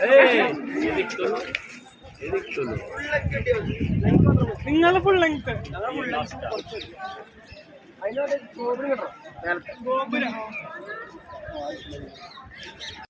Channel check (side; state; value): both; identical; correlation 1.00